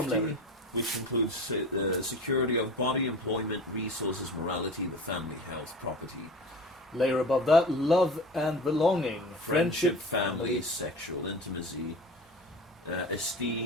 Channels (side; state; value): both; normal; correlation 0.35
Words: layer. which includes security of body, employment, resources, morality, the family, health, property, Layer above that, love and belonging, friendship, family, sexual intimacy,